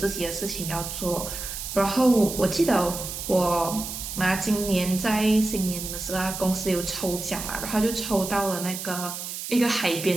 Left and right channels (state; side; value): noise; right; hiss, 7 dB below the sound